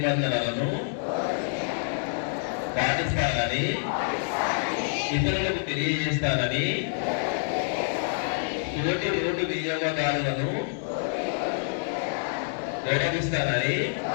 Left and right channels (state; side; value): silent; right; digital silence